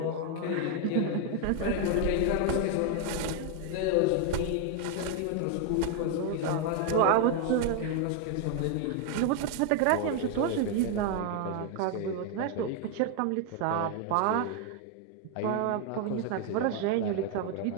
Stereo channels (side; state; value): both; different; correlation 0.01